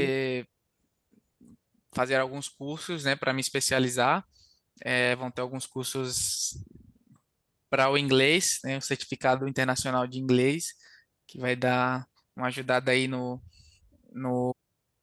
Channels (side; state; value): both; identical; correlation 1.00